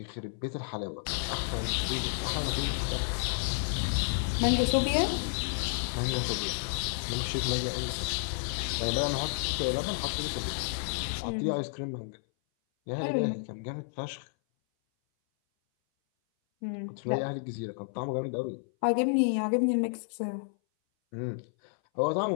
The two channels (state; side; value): silent; right; 57 dB below the other